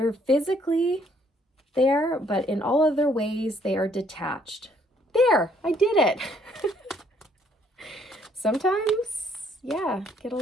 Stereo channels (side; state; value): both; normal; correlation 0.66